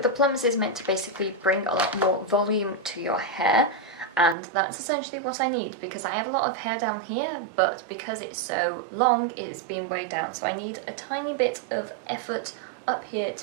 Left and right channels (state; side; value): drops out; left; at 4.4 s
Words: Plumps is meant to basically bring a lot more volume to your hair. And that's essentially what I need because I have a lot of hair down here, but because it's so long, it is being weighed down. So I need a tiny bit of effort up here